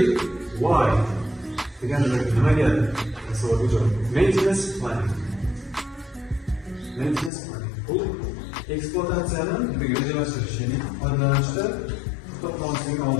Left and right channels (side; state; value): right; drops out; at 7.3 s